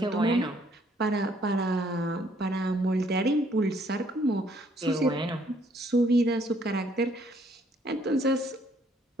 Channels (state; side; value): normal; both; correlation 0.65